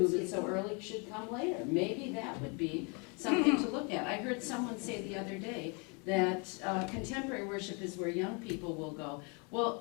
so early should come later. Maybe that would be something to look at. I heard someone say the other day that contemporary worship is where young people will go.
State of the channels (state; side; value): quieter; right; 33.2 dB